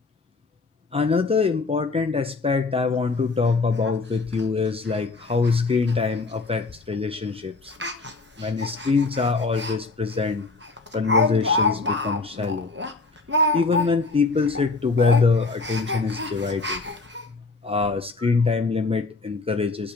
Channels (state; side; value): quieter; right; 3.8 dB